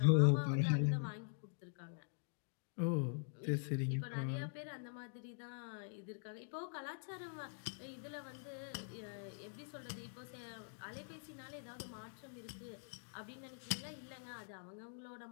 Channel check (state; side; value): silent; right; digital silence